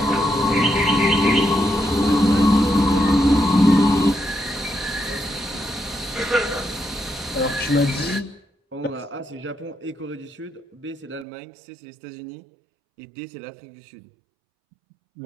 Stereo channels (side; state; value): left; drops out; at 11.2 s